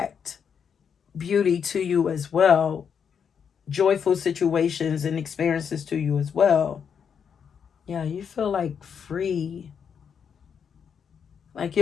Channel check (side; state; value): right; quieter; 7.2 dB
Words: beauty to you as well, joyful situations and experiences to you as well. Yeah, you feel like free. Like,